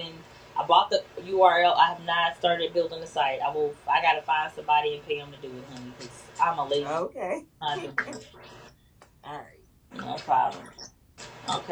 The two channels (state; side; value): identical; both; correlation 1.00